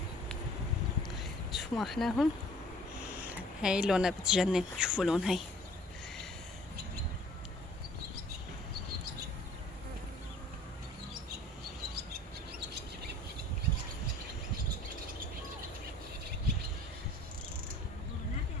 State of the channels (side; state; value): both; normal; correlation 0.51